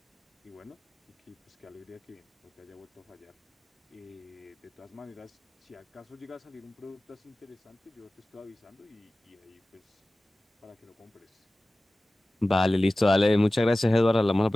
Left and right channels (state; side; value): normal; both; correlation 0.97